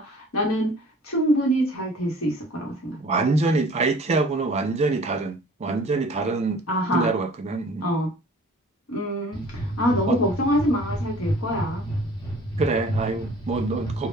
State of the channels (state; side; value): normal; both; correlation 0.50